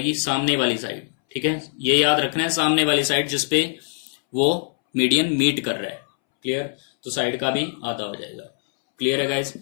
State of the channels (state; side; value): silent; right; 64 dB below the other